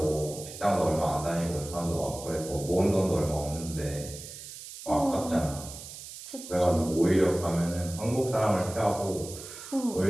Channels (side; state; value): right; noise; hiss, 13 dB below the sound